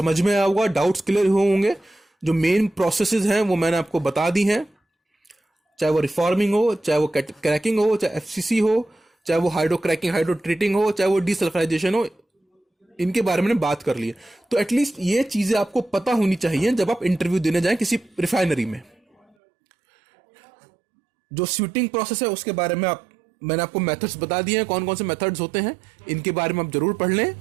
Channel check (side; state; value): left; drops out; at 19.4 s